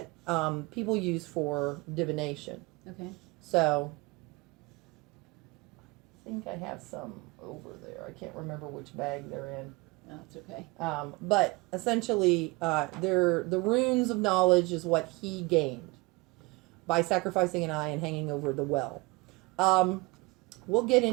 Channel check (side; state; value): left; quieter; 25.0 dB